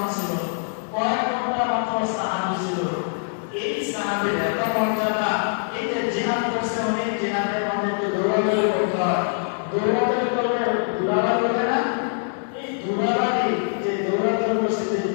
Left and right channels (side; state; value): right; silent; digital silence